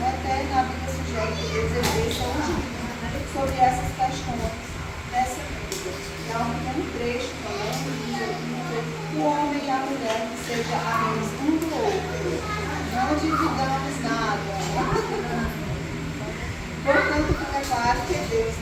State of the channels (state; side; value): identical; both; correlation 1.00